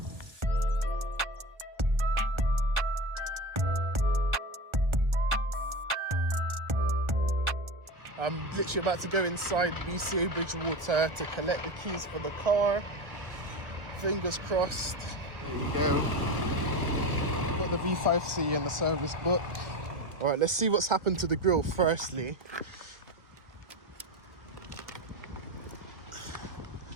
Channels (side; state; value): left; late; 1.4 ms